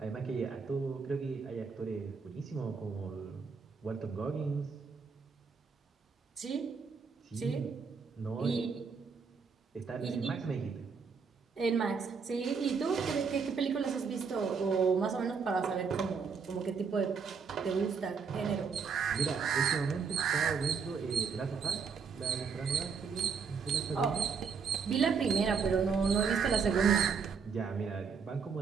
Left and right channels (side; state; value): left; quieter; 5.7 dB